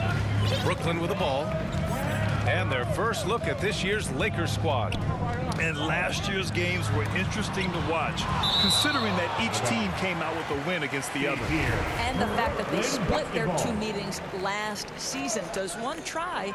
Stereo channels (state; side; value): identical; both; correlation 1.00